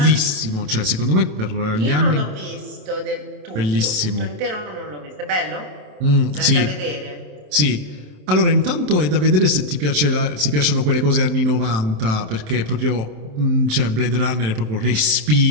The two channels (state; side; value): late; left; 27 ms